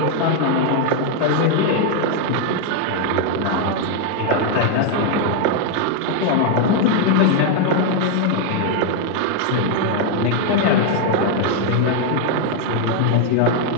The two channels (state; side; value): different; both; correlation 0.00